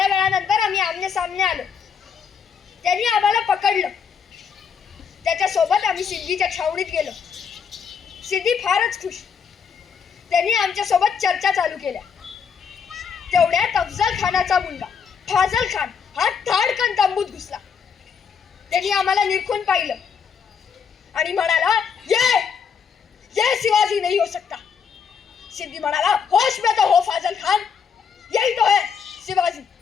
वेळानंतर आम्ही आमने सामने आलो. त्यांनी आम्हाला पकडलं. त्याच्या सोबत आम्ही सिद्धीच्या छावणीत गेलो. सिद्धी फारच खुश. त्यांनी आमच्या सोबत चर्चा चालू केल्या. तेवढ्यात अफजल खानाचा मुलगा फाजल खान हा धाडकन तंबूत घुसला. त्यांनी आम्हाला निरखून पाहिलं आणि म्हणाला, ये शिवाजी नहीं हो सकता. सिद्धी म्हणाला, होश में तो हो फाजल खान, यही तो है शिवाजी.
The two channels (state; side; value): quieter; right; 6.6 dB